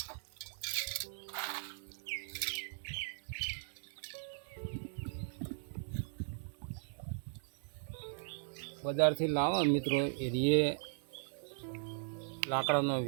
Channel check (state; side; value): silent; left; 52 dB below the other